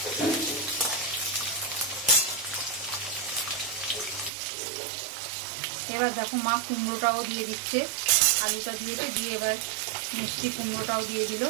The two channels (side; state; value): left; drops out; at 4.3 s